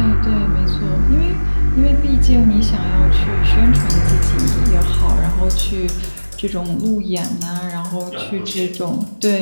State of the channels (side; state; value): both; inverted; correlation -1.00